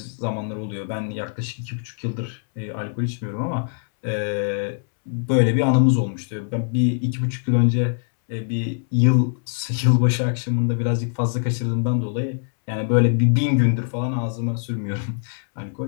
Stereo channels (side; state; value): right; silent; 64 dB below the other